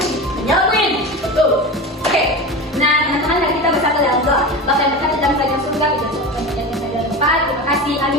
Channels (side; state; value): both; normal; correlation 0.27